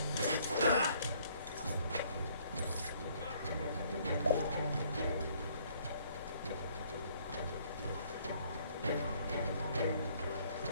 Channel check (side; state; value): both; inverted; correlation -0.62